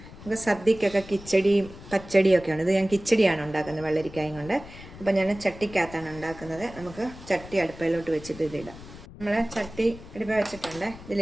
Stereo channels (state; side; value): noise; left; rumble, 16 dB below the sound